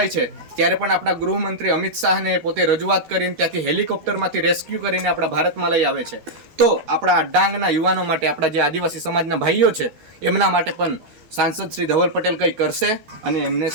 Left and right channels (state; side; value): late; left; 12 ms